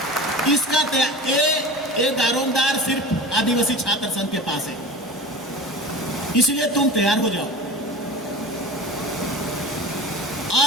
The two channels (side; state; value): both; normal; correlation 0.34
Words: इसका ये दारोमदार सिर्फ आदिवासी छात्र संघ के पास है। इसलिए तुम तैयार हो जाओ,